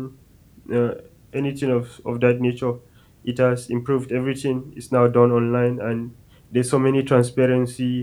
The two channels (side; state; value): both; identical; correlation 1.00